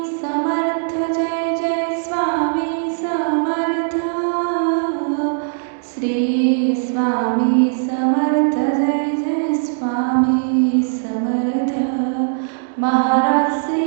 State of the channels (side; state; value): left; silent; digital silence